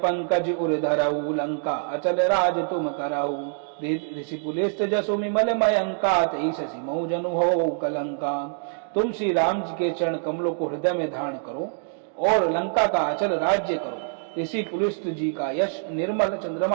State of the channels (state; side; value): silent; left; digital silence